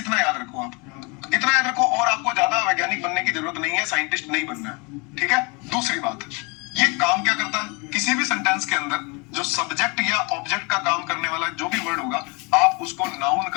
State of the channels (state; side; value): quieter; right; 29.6 dB